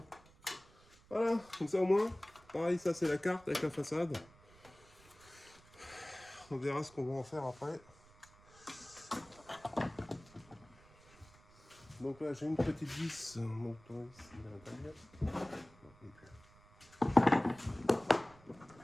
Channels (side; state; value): right; noise; rumble, 25 dB below the sound